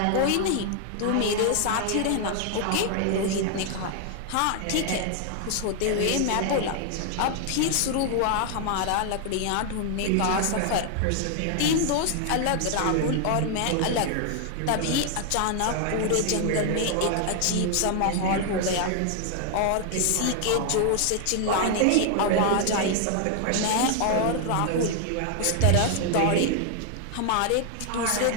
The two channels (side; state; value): both; different; correlation 0.00